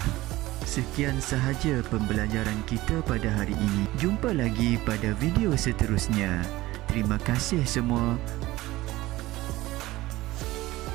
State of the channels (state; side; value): quieter; left; 18.1 dB